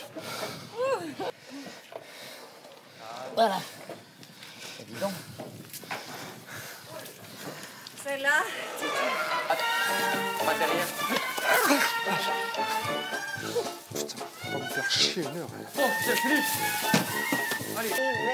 Voilà. Évident. C'est là. On va derrière. Putain, on va me faire chier une heure. Bon, c'est fini. Allez.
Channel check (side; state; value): both; identical; correlation 1.00